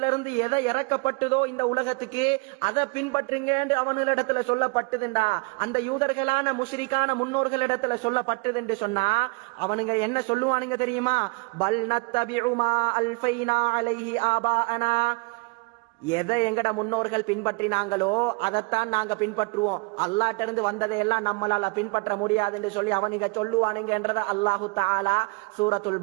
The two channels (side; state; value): left; quieter; 29.9 dB